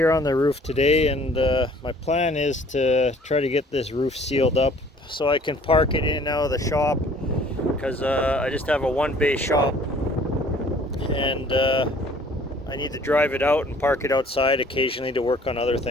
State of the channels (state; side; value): normal; both; correlation 0.55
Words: on the roof today, and my plan is to try to get this roof sealed up so I can park it in and out of the shop, because I just have a one-bay shop, and I need to drive it out and park it outside occasionally to work on other